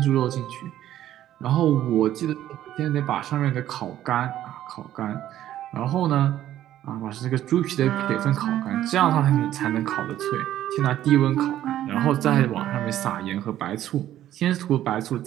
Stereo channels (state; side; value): quieter; left; 12.5 dB